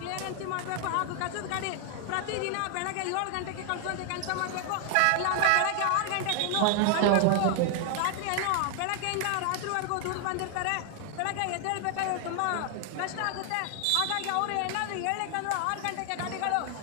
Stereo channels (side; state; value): both; different; correlation 0.00